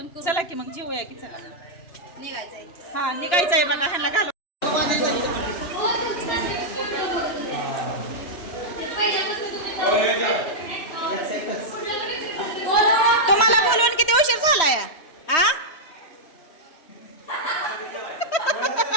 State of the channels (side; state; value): right; late; 3.1 ms